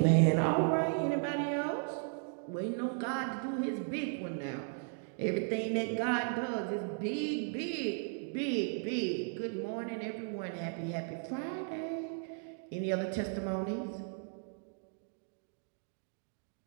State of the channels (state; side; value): silent; left; 54 dB below the other